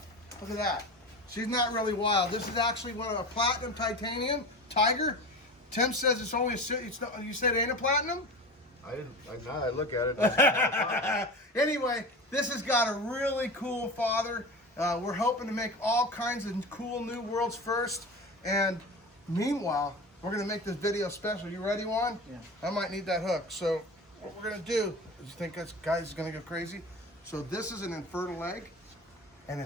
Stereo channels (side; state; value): both; normal; correlation 0.30